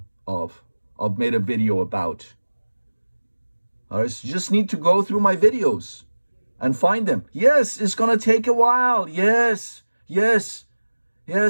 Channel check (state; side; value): inverted; both; correlation -1.00